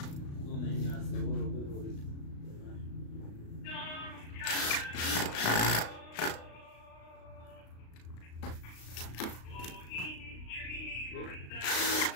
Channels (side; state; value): right; late; 36 ms